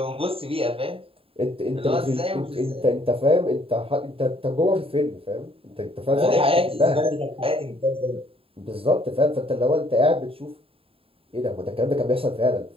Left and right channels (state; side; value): late; left; 0.27 ms